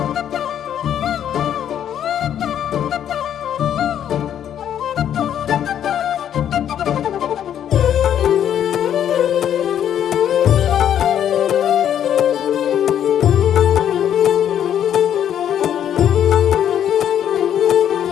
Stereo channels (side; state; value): right; quieter; 9.9 dB